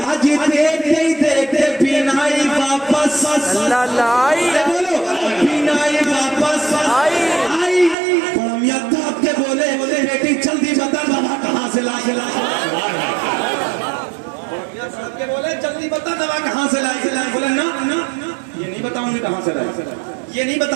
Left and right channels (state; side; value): drops out; left; at 8.0 s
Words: آج دیکھتے ہی دیکھتے بینائی واپس لائی, بولو بینائی واپس آئی. میاں تھاپ کے بولے بیٹی جلدی بتا دوا کہاں سے لائی. کے بولے جلدی بتا دوا کہاں سے لائی. بولے نا یہ نہیں بتاؤں گی کہاں سے لائی, یہ نہیں